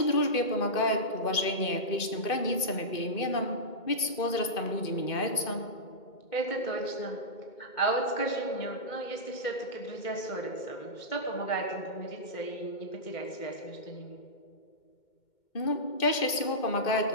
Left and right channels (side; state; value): right; late; 2.2 ms